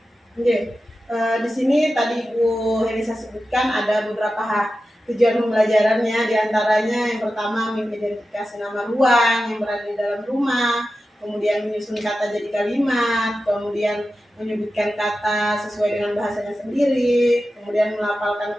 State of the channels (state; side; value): normal; both; correlation 0.93